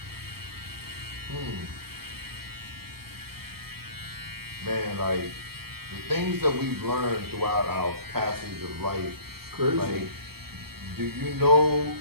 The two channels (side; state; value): left; late; 0.95 ms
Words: Man, like the things that we've learned throughout our passage of life. Crazy. Like, do you know